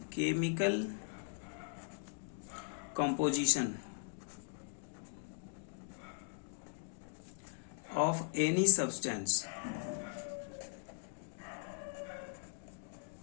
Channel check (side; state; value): right; silent; digital silence